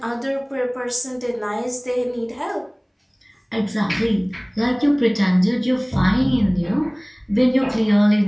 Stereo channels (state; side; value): identical; both; correlation 1.00